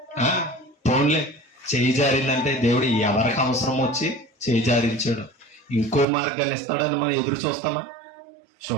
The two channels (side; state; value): left; drops out; at 6.1 s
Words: పోన్లే, చేయి జారిందంటే దేవుడు ఎవరికి అవసరం వచ్చి చేయి జారించాడు, ఇంకో మార్గాన్ని ఇస్తాడని మనం ఎదురు చూస్తామా?